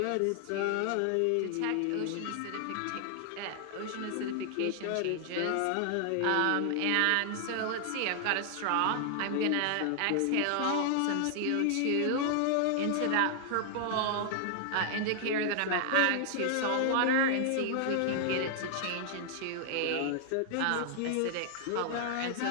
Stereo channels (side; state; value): both; different; correlation 0.00